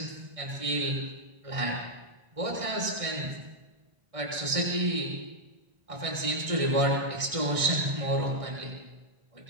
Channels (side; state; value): left; late; 1.6 ms